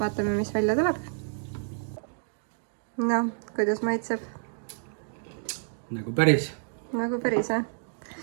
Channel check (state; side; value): silent; left; digital silence